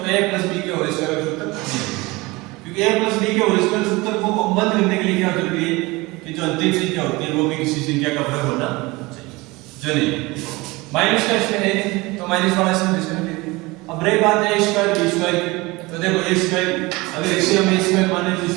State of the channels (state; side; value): quieter; left; 22.8 dB